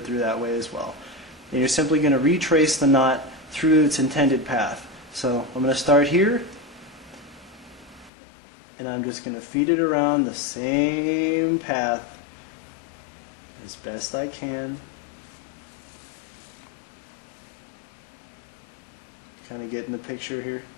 through that way as well. And you're simply going to retrace the knot through its intended path. So I'm going to start here, and I'm just going to feed it around the same path as best I can. Kind of getting the picture here.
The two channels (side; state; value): right; drops out; at 8.1 s